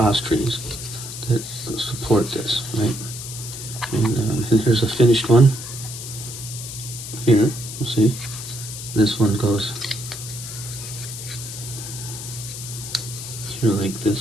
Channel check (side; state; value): left; noise; hiss, 9 dB below the sound